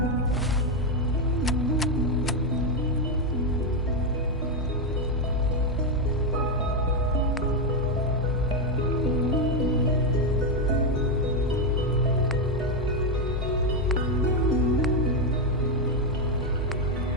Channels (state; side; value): normal; both; correlation 0.05